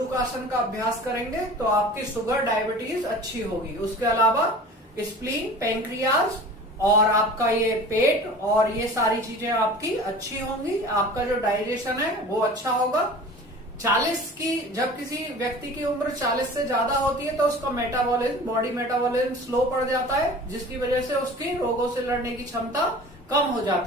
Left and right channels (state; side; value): normal; both; correlation 0.41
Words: का अभ्यास करेंगे तो आपकी शुगर, डायबिटीज अच्छी होगी। उसके अलावा स्प्लीन, पैंक्रियाज और आपका ये पेट और ये सारी चीजें आपकी अच्छी होंगी, आपका जो डाइजेशन है वो अच्छा होगा। 40 की जब किसी व्यक्ति की उम्र 40 से ज्यादा होती है तो उसका मेटाबॉलिज्म, बॉडी मेटाबॉलिज्म स्लो पड़ जाता है, जिसकी वजह से उसकी रोगों से लड़ने की क्षमता कम हो